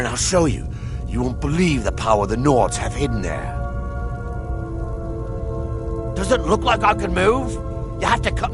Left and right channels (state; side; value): identical; both; correlation 1.00